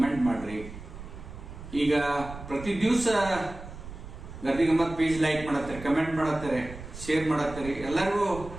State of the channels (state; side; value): noise; right; rumble, 13 dB below the sound